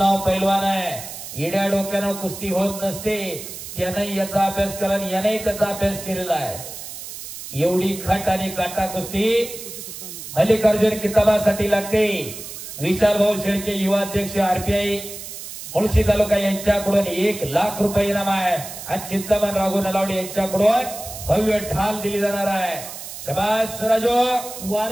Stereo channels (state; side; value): noise; right; hiss, 11 dB below the sound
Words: पैलवान आहे. येड्या डोक्यानं कुस्ती होत नसते. त्याने याचा अभ्यास केला आणि याने त्याचा अभ्यास केलेला आहे. एवढी खट आणि काटा कुस्ती मल्लिकार्जुन किताबासाठी लागते. विशाल भाऊ शेळके युवा अध्यक्ष आरपीआय मुळशी तालुका यांच्याकडून 1 लाख रुपये इनाम आहे आणि चिंतामण राघू नलावडे यांच्याकडून भव्य ढाल दिली जाणार आहे. शबास राजो.